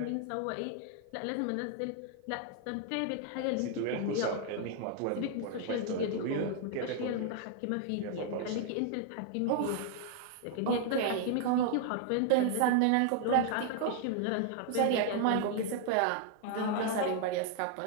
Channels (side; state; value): both; different; correlation 0.00